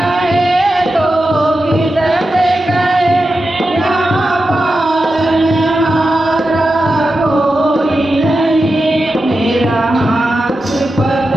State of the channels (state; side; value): normal; both; correlation 0.91